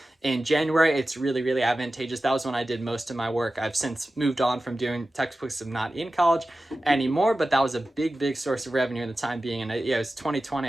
in January, it's really, really advantageous. That was when I did most of my work. I've since moved on from doing textbooks. I'm not in college anymore, but that was a big, big source of revenue in the time being. And it was 2020.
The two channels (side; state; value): both; normal; correlation 0.94